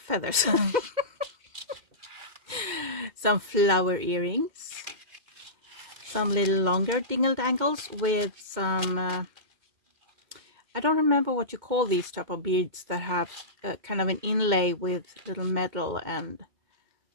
Some flower earrings, some little longer dingle dangles with some I don't remember what you call these type of beads that have kind of an inlay with little metal and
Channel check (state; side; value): late; left; 2.1 ms